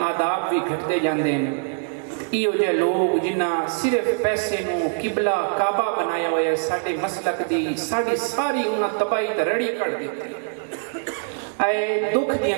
آداب بھی گھٹتے جاندے ہیں۔ ایو جہ لوگ جنہ صرف پیسے نو قبلہ کعبہ بنایا ہویا ہے، ساڈے مسلک دی ساڈی ساری انہاں تباہی تے رڑی کر دیتی۔ اے دکھ دیاں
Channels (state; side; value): silent; left; digital silence